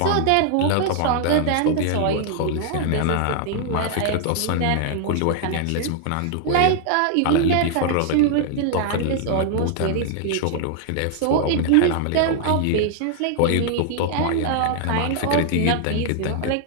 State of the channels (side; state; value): both; different; correlation 0.00